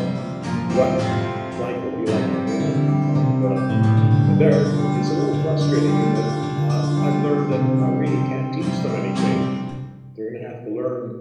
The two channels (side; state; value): both; identical; correlation 1.00